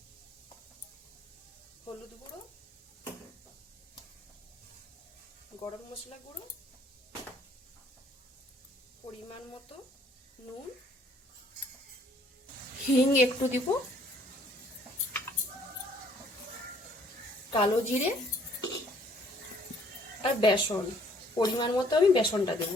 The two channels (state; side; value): normal; both; correlation 0.61